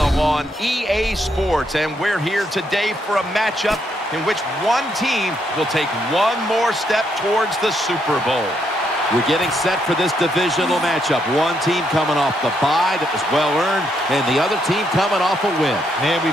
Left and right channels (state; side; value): normal; both; correlation 0.76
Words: on EA Sports, and we're here today for a matchup in which one team will take one more step towards the Super Bowl. We're getting set for this divisional matchup. One team coming off the bye that was well-earned, and the other team coming off a win. Man, we